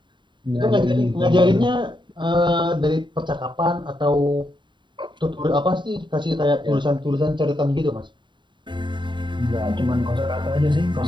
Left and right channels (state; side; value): late; left; 0.23 ms